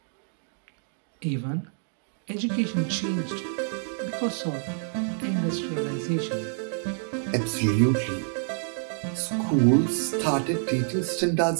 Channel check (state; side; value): silent; left; digital silence